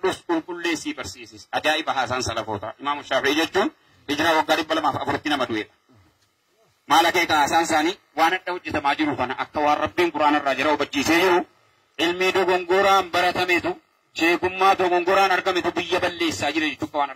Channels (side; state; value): both; identical; correlation 1.00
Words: كل ليسي برسيسس أجائب حسن سلفوتا إمام الشافعي جتون إجرا وقارب بلا ما أفرتنا مدوية ما لك حسن ساني وانا توجه تماجرو فانا أكوار ربين قرآن الرجرة وبجيسه علمي دو غنغوران برتميتو شيكما دو غنغوران أرقميتو بيا بلي ساجر جتوك وانا